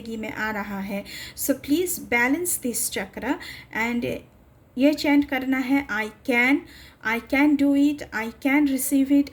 में आ रहा है। So please balance this chakra and ये चैंट करना है, I can do it, I can receive it,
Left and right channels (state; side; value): identical; both; correlation 1.00